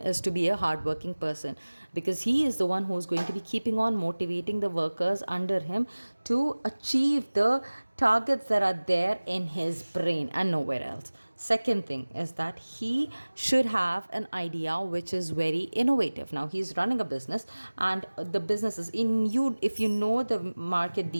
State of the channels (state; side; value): inverted; both; correlation -1.00